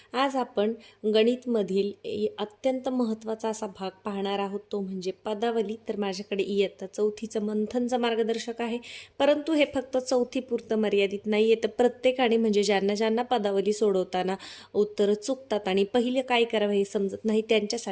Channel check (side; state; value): both; identical; correlation 1.00